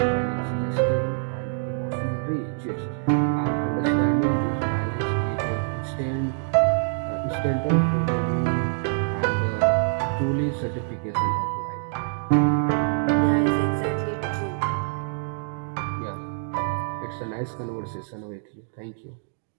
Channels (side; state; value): left; silent; 62 dB below the other